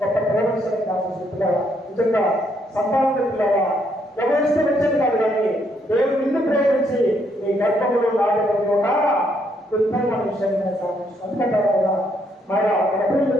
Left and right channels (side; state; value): both; normal; correlation 0.72